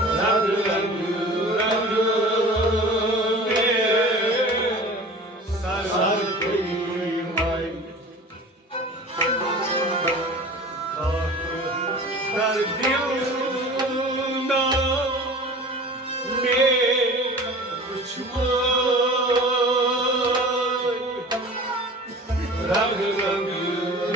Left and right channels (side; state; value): both; normal; correlation 0.40